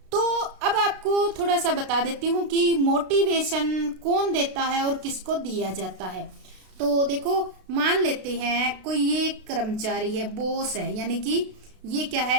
तो अब आपको थोड़ा सा बता देती हूँ कि मोटिवेशन कौन देता है और किसको दिया जाता है। तो देखो, मान लेते हैं कोई ये कर्मचारी है, बॉस है, यानी कि ये क्या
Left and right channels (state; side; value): late; left; 32 ms